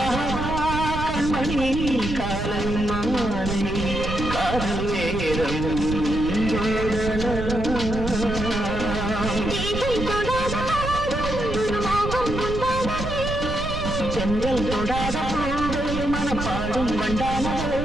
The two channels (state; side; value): noise; right; rumble, 5 dB below the sound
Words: செங்கல் தொடாத மனப்பாடும் வண்டான